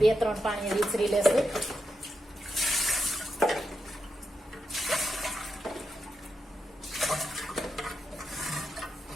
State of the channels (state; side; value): normal; both; correlation 0.85